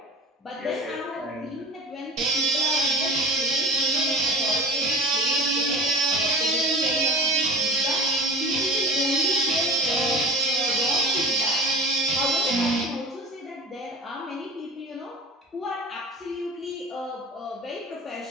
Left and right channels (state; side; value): normal; both; correlation 0.38